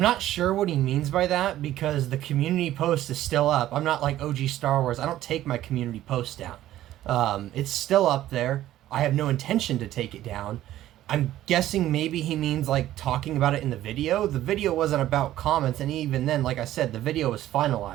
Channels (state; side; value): quieter; left; 13.7 dB